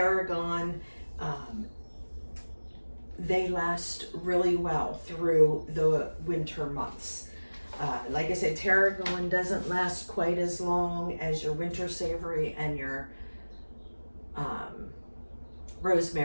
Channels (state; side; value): inverted; both; correlation -1.00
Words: They last really well through the winter months. Like I said, tarragon doesn't last quite as long as your winter savory and your